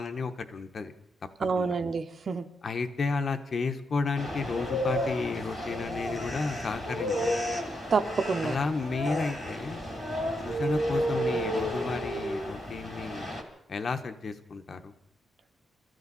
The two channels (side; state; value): both; normal; correlation 0.81